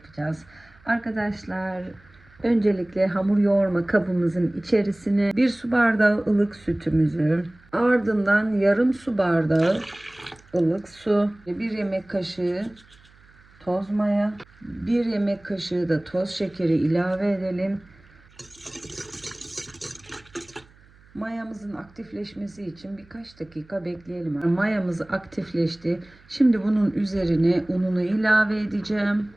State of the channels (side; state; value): right; noise; hum, 28 dB below the sound